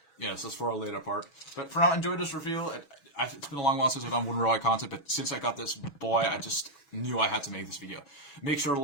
Yes, that's for a later part. But for now, enjoy this review. It's been a long while since I've done wooden railway content, but since I got this boy, I just knew I had to make this video. Make sure to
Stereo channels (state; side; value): late; right; 6.2 ms